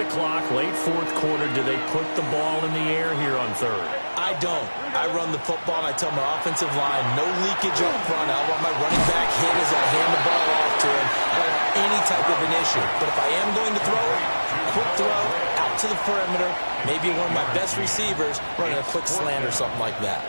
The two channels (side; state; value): both; inverted; correlation -1.00